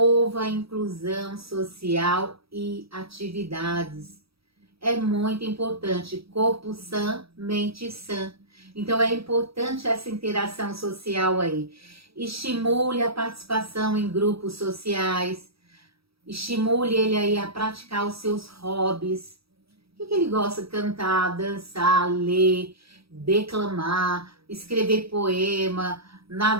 a inclusão social e atividades. É muito importante, corpo sã, mente sã. Então é importante essa interação social aí. Estimule a participação em grupos sociais, estimule ele aí a praticar os seus hobbies. O que ele gosta? Cantar, dançar, ler, declamar, escrever poema,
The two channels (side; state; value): left; late; 0.76 ms